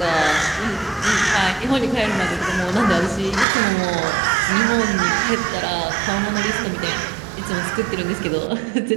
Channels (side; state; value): left; drops out; at 3.5 s